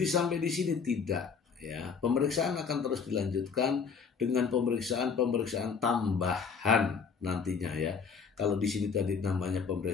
sampai di sini? Tidak, ya. Pemeriksaan akan terus dilanjutkan dengan pemeriksaan tambahan nantinya ya. Kalau di sini tadi namanya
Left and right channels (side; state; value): right; quieter; 5.8 dB